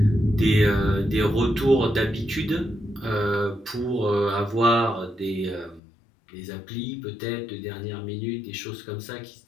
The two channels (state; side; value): drops out; right; at 5.8 s